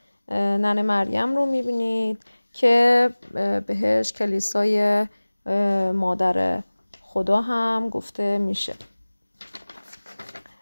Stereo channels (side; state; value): both; inverted; correlation -1.00